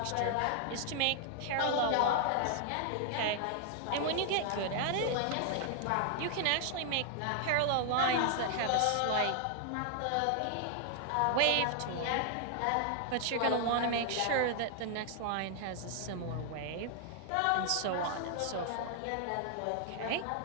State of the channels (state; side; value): different; both; correlation 0.00